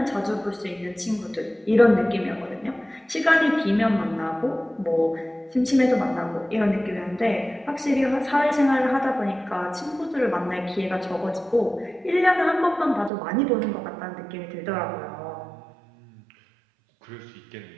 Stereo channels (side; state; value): left; drops out; at 13.1 s